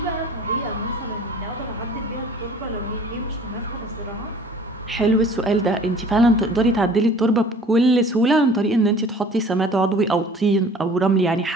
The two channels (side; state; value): both; normal; correlation 0.49